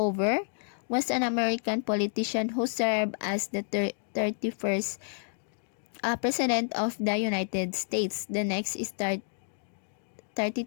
was an American politician who served as the 31st President of the United States. The next is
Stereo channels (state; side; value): silent; right; 58 dB below the other